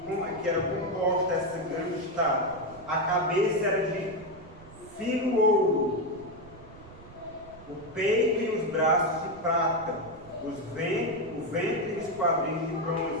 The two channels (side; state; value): right; noise; rumble, 20 dB below the sound